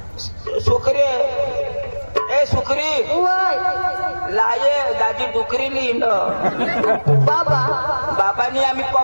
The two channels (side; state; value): both; inverted; correlation -1.00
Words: सुखरे ए सुखरी लाये दादी डुकरी लिहिण बाबांनी आम्ही